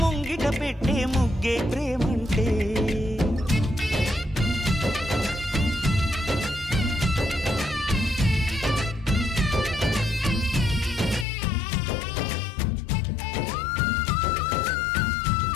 ముంగిట పెట్టే ముగ్గే ప్రేమంటే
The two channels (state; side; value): drops out; right; at 11.2 s